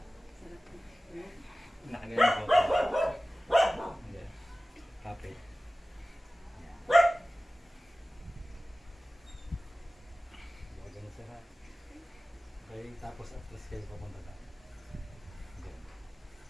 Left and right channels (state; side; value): normal; both; correlation 0.97